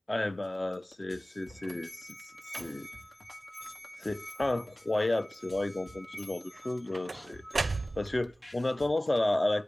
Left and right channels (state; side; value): normal; both; correlation 0.98